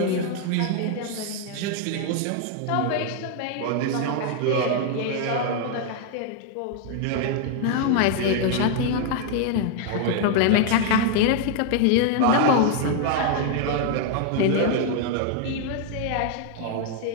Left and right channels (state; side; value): different; both; correlation 0.00